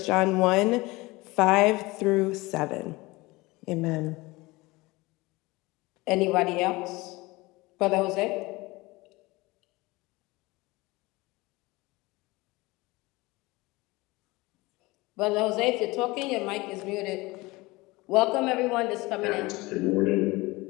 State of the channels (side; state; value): right; quieter; 22.0 dB